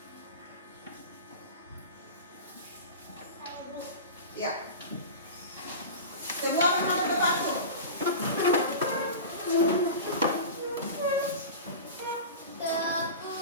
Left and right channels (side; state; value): both; inverted; correlation -0.31